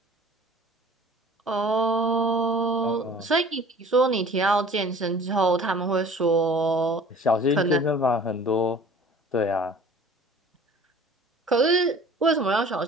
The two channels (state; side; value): normal; both; correlation 0.47